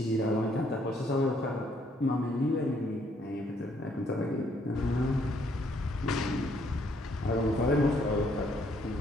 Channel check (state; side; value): normal; both; correlation 0.68